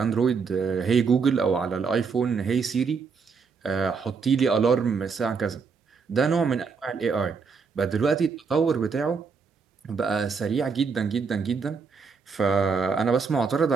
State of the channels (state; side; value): quieter; left; 5.3 dB